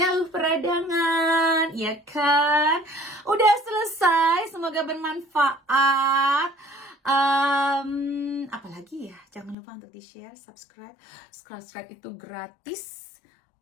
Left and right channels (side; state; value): right; drops out; at 9.6 s